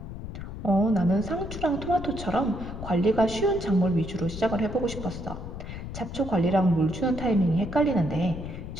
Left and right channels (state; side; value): noise; left; rumble, 9 dB below the sound